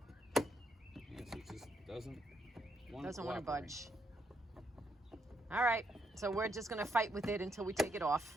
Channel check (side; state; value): both; normal; correlation 0.77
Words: Yes, it just doesn't want to budge. All right, so we're just gonna fight with it until we take it